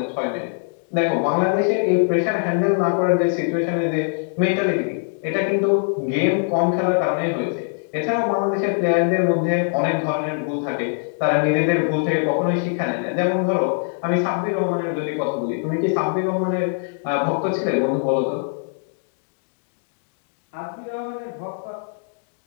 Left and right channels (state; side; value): silent; right; digital silence